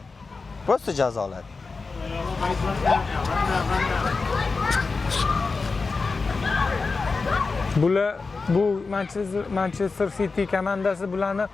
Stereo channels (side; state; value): right; quieter; 4.2 dB